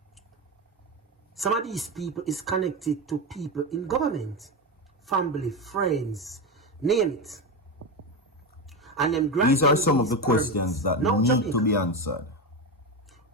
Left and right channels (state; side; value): normal; both; correlation 0.16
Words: Some of these people is connected to people in government. Family, friends, name it. And them these are some of the questions that need Jamaica to be answered.